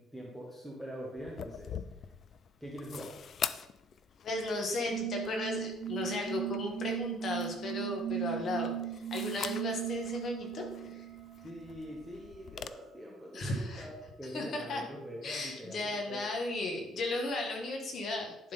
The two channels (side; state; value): both; normal; correlation 0.57